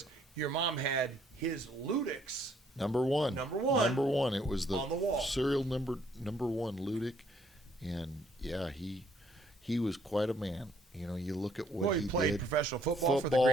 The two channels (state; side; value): normal; both; correlation 0.66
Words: your mom had his Ludix. Number one. It was the on the wall. serial number one Ludic, and yeah, he was quite a man. You look at what He played did. professional football for the